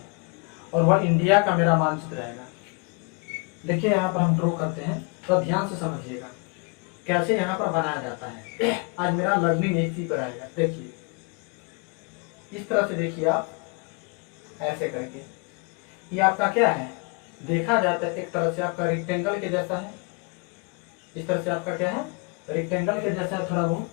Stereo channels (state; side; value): quieter; right; 32.1 dB